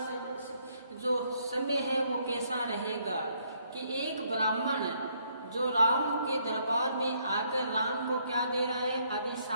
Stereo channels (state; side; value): inverted; both; correlation -0.69